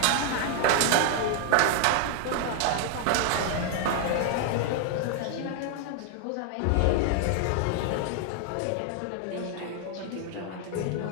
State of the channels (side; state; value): both; different; correlation 0.00